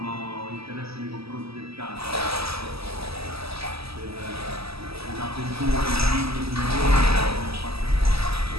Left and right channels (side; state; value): left; late; 0.77 ms